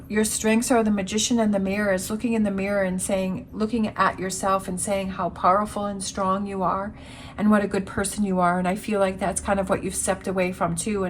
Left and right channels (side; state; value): both; identical; correlation 1.00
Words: your strengths are the magician and the mirror, is looking in the mirror and looking at yourself and saying how powerful and strong you are and what a good person you are. And I feel like that's kind of what you've stepped away from too.